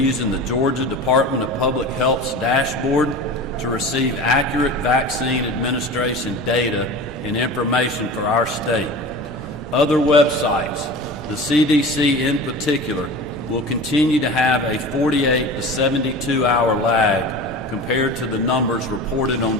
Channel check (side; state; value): both; normal; correlation 0.34